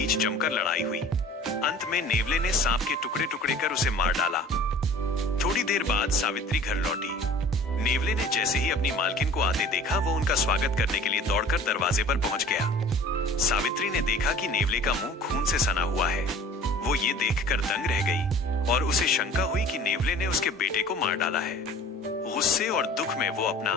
जमकर लड़ाई हुई। अंत में नेवले ने सांप के टुकड़े टुकड़े कर उसे मार डाला। थोड़ी देर बाद सावित्री घर लौटी। नेवले ने जैसे ही अपनी मालकिन को आते देखा, वो उनका स्वागत करने के लिए दौड़कर दरवाजे पर पहुंच गया। सावित्री ने देखा कि नेवले का मुंह खून से सना हुआ है। वो ये देखकर दंग रह गई और उसे शंका हुई कि नेवले ने उसके बेटे को मार डाला है। गुस्से और दुख में वो अपना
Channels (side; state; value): both; normal; correlation 0.46